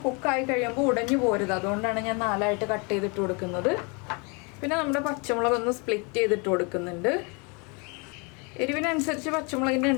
കുക്കായി കഴിയുമ്പോൾ ഉടഞ്ഞു പോരുത്, അതുകൊണ്ടാണ് ഞാൻ 4ആയിട്ട് കട്ട് ചെയ്തിട്ട് കൊടുക്കുന്നത്. പിന്നെ നമ്മുടെ പച്ചമുളക് ഒന്ന് സ്പ്ലിറ്റ് ചെയ്തിട്ട് കൊടുക്കുന്നുണ്ട്. എരിവിനനുസരിച്ച് പച്ചമുളകിൻ്റെ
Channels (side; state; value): right; quieter; 31.8 dB